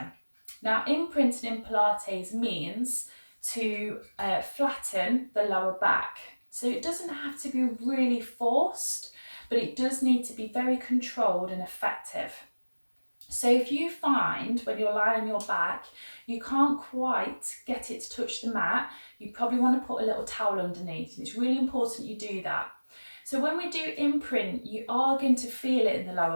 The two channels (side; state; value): both; inverted; correlation -1.00